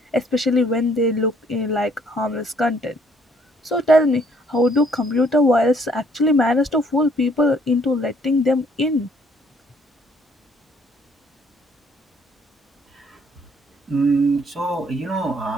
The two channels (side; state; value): both; normal; correlation 0.64